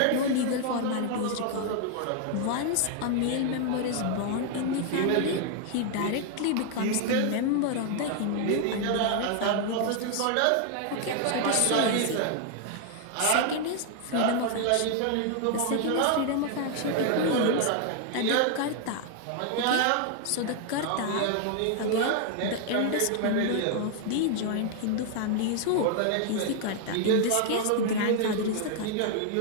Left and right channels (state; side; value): different; both; correlation 0.00